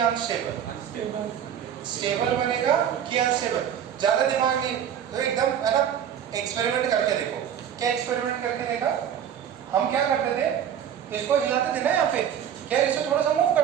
स्टेबल बनेगा कि अनस्टेबल। ज्यादा दिमाग नहीं, तो एकदम है ना, एक्सपेरिमेंट करके देखो। क्या एक्सपेरिमेंट करके देखा? हम क्या करते थे, इसको हिलाते थे ना यहाँ पे, क्या इसे थोड़ा सा मूव कर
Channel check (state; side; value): quieter; left; 9.2 dB